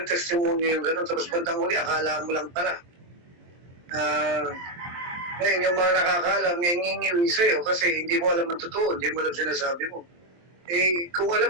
testimony yung gano'n, tapos bandang huli, akala mo lang pala. Ngayon, yung mga nakakaalam, ngingiwi sa'yo kasi hindi mo alam ang totoo, hindi mo alam sinasabi mo. Eh, kung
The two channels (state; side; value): late; left; 23 ms